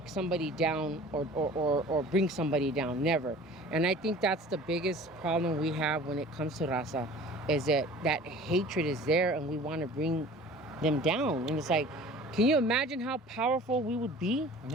somebody down or bring somebody down. Never. And I think that's the biggest problem we have when it comes to raza, is that hatred is there, and we want to bring them down. And it's like, can you imagine how powerful we would be?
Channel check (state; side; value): normal; both; correlation 0.44